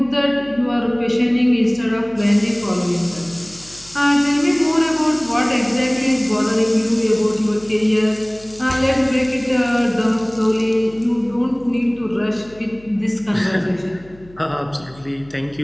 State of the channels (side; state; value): left; noise; hum, 24 dB below the sound